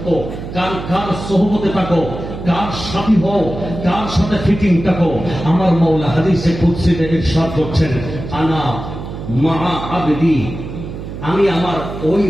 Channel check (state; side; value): noise; right; hum, 9 dB below the sound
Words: কার সোহবতে থাকো? কার সাথী হও? কার সাথে ফিটিং থাকো? আমার মওলা হাদিসে কুদসিতে ইরশাদ করছেন, আনা মা আবদি, আমি আমার ওই